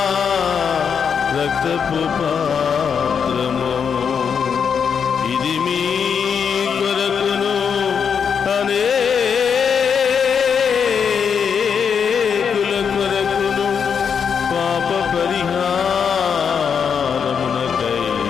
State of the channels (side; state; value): right; quieter; 6.8 dB